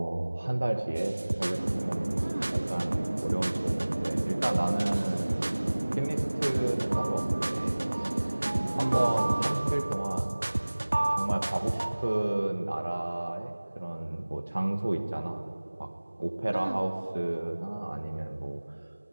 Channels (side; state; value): both; inverted; correlation -1.00